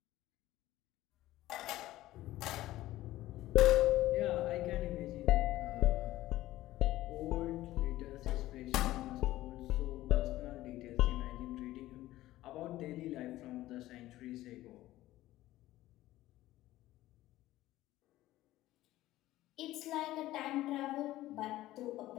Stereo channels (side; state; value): right; quieter; 15.8 dB